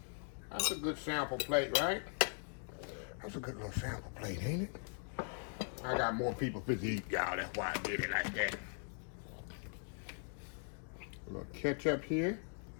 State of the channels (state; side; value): silent; right; 51 dB below the other